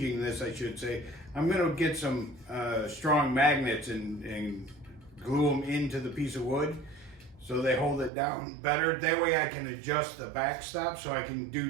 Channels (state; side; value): drops out; left; at 8.1 s